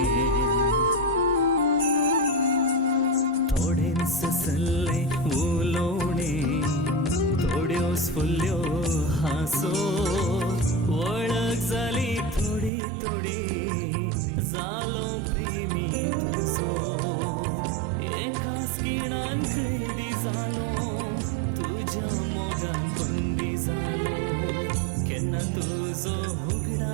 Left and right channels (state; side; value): drops out; left; at 12.7 s